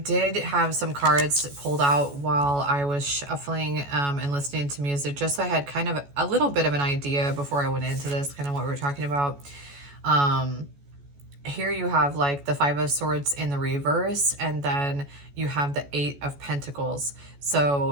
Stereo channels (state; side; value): late; left; 14 ms